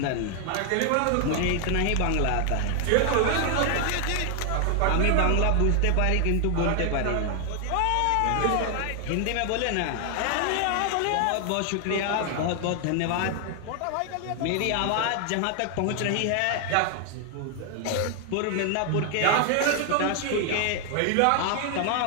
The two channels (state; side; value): different; both; correlation 0.00